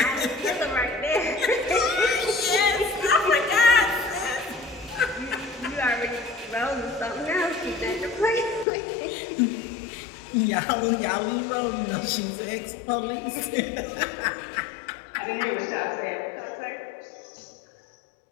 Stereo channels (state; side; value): drops out; right; at 8.7 s